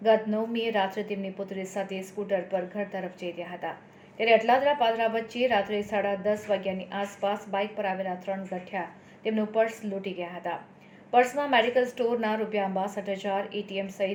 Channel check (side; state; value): both; identical; correlation 1.00